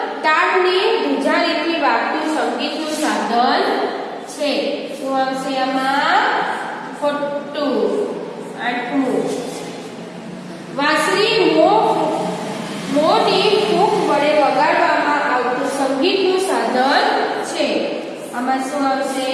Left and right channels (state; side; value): identical; both; correlation 1.00